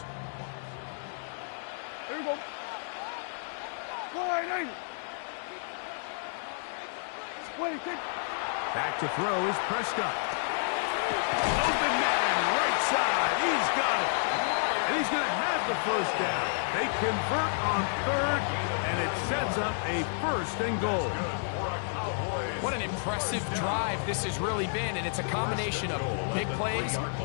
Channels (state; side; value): silent; right; digital silence